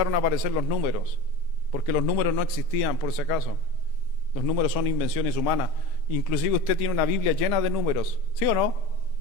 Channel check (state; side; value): late; right; 5.8 ms